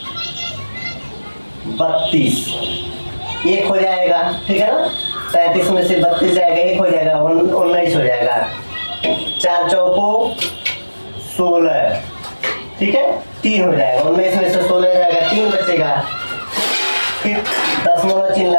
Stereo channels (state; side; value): inverted; both; correlation -1.00